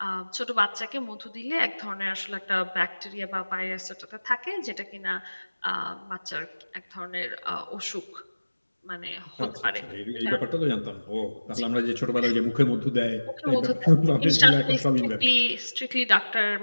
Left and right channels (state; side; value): inverted; both; correlation -1.00